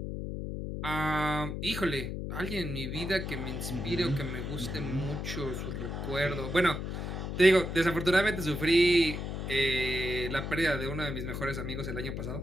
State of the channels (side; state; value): left; noise; hum, 4 dB below the sound